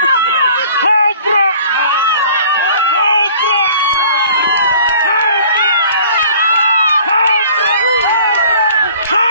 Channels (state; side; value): inverted; both; correlation -0.50